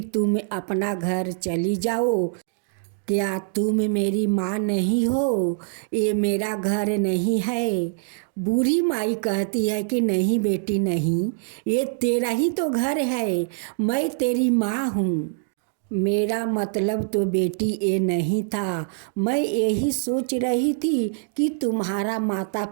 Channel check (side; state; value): left; silent; digital silence